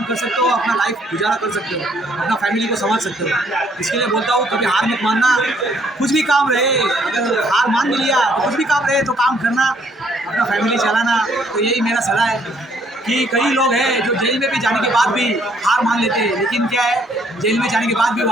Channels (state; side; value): normal; both; correlation 0.66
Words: कर सकते हो, अपना लाइफ गुजारा कर सकते हो, अपना फैमिली को संभाल सकते हो। इसके लिए बोलता हूँ कभी हार मत मानना। कुछ भी काम रहे, अगर हार मान भी लिया तो कुछ भी काम रहे तो काम करना, अपना फैमिली चलाना। तो यही मेरा सलाह है कि कई लोग हैं जो जेल में भी जाने के बाद भी हार मान लेते हैं, लेकिन क्या है, जेल में जाने के बाद भी